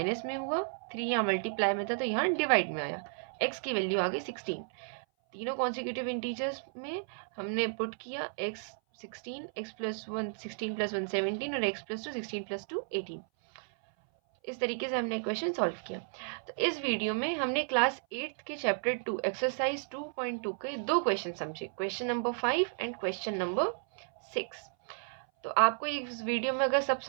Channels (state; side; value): silent; left; 56 dB below the other